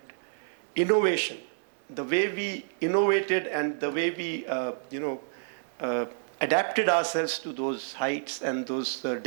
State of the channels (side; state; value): left; silent; digital silence